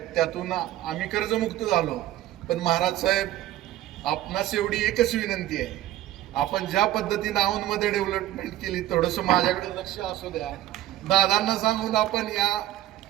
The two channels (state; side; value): quieter; left; 14.0 dB